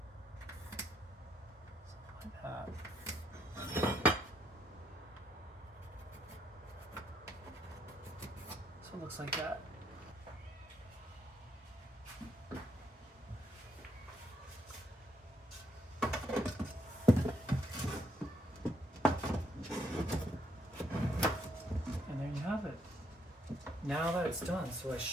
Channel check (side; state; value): both; normal; correlation 0.73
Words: like that. So it looks like that. And there you have it. Now that it's done, so I